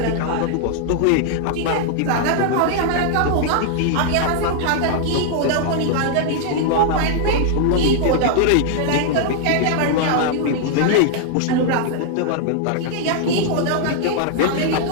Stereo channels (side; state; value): both; different; correlation -0.01